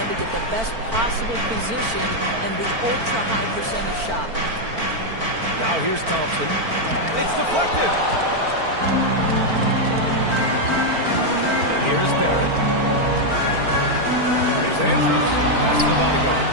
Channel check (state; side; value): late; left; 4.4 ms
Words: to get the best possible position and the ultra-high percentage shot. Now here's Thompson. It's deflected. Here's Barrett. Here's Andrews. Pass to the bodyguard.